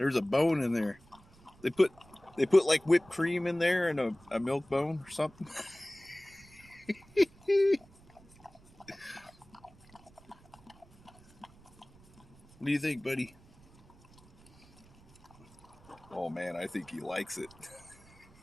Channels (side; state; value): right; noise; rumble, 26 dB below the sound